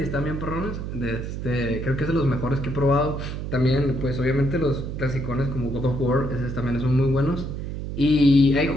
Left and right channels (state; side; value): noise; right; hum, 6 dB below the sound